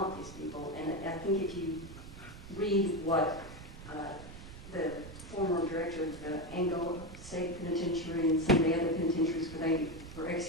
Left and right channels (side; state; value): right; noise; rumble, 14 dB below the sound